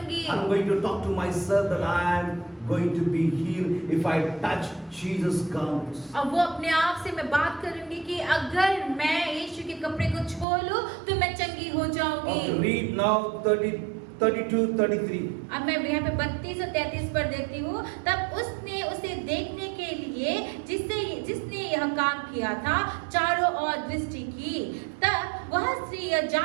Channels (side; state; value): left; drops out; at 10.5 s